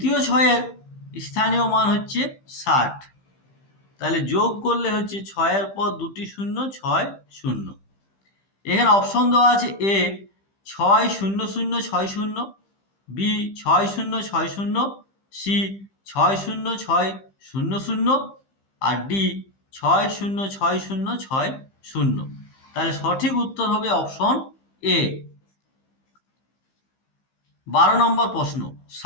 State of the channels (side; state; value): right; late; 15 ms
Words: 6 এর স্থানীয় মান হচ্ছে 60, তাহলে যোগ করলে হচ্ছে 6 এর পর দুটি শূন্য, 6 শূন্য। এখানে অপশন দেওয়া আছে এ 6 0 0 6 0, বি 6 0 6 0, সি 6 0 6 0 0, আর ডি 6 0 6 0 6 0। তাহলে সঠিক উত্তর হবে অপশন এ। 12 নম্বর প্রশ্ন,